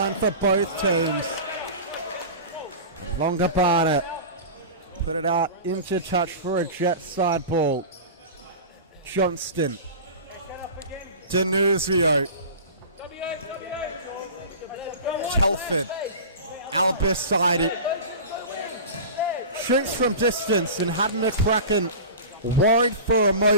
for both teams. Longobarda put it out into touch for a Jet side ball. Johnston. Denuzio. Telford. Albiside. Shoots from distance and had McCracken worried for a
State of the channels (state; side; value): inverted; both; correlation -0.33